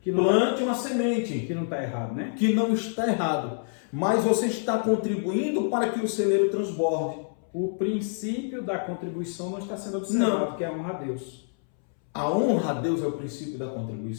Plante uma semente. Que não está errado, né? Que não está errado. Mas você está contribuindo para que o celeiro transborde. O princípio da contribuição não está sendo observado, que é a honra a Deus. A honra a Deus é o princípio da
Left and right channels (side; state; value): right; silent; 60 dB below the other